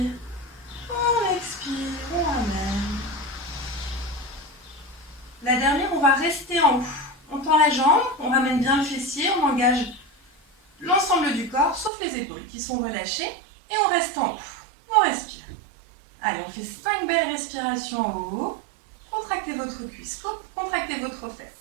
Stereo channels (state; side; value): drops out; left; at 11.9 s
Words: on expire, on ramène. La dernière, on va rester en haut. On tend la jambe, on ramène bien le fessier, on engage l'ensemble du corps, sauf les épaules qui sont relâchées, et on reste en haut. On respire. Allez, on fait 5 belles respirations en haut. Contractez votre cuisse, contractez votre